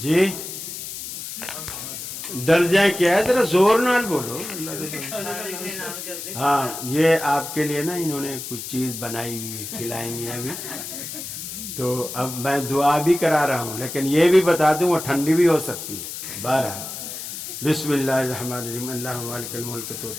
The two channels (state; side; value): noise; left; hiss, 8 dB below the sound